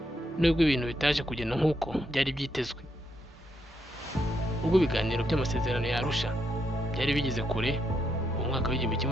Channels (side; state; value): both; normal; correlation 0.79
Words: nubwo ibintu bitaje kugenda nk'uko byari byitezwe. Ubwo ibiganiro by'amasezerano ya Arusha byari bigeze kure mu mwaka